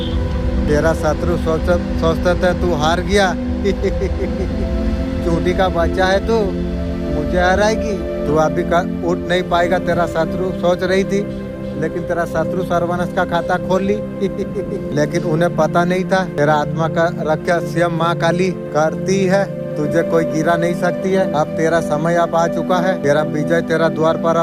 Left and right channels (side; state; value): both; identical; correlation 1.00